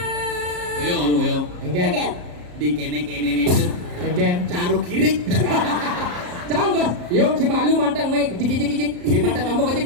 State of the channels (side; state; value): left; late; 34 ms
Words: Yo. Enggak. Di kene itu Enggak. caru kirik. Canggot. Yuk si malu mantang main kicik. Di mata kamu kecik